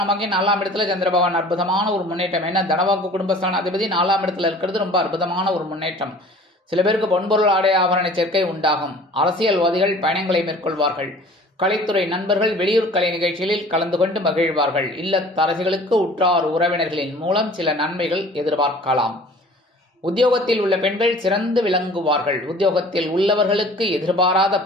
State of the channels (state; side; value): normal; both; correlation 0.47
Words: 4ஆம் இடத்துல சந்திர பகவான் அற்புதமான ஒரு முன்னேற்றம். ஏன்னா தனவாக்கு குடும்பஸ்தான அதிபதி 4ஆம் இடத்துல இருக்கிறது ரொம்ப அற்புதமான ஒரு முன்னேற்றம். சில பேருக்கு பொன்பொருள் ஆடை ஆபரண சேர்க்கை உண்டாகும். அரசியல்வாதிகள் பயணங்களை மேற்கொள்வார்கள். கலைத்துறை நண்பர்கள் வெளியூர் கலை நிகழ்ச்சிகளில் கலந்து கொண்டு மகிழ்வார்கள். இல்லத்தரசிகளுக்கு உற்றார் உறவினர்களின் மூலம் சில நன்மைகள் எதிர்பார்க்கலாம். உத்தியோகத்தில் உள்ள பெண்கள் சிறந்து விளங்குவார்கள். உத்தியோகத்தில் உள்ளவர்களுக்கு எதிர்பாராத